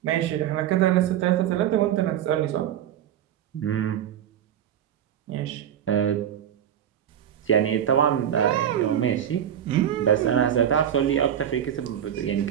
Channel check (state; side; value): quieter; left; 10.1 dB